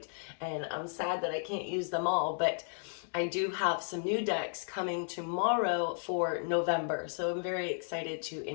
And I'm sad that I can't use them all, but I do have some new decks coming tomorrow for November. So I'm very excited to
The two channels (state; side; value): silent; right; digital silence